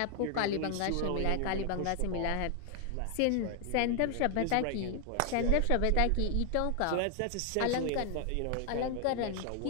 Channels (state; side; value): different; both; correlation 0.00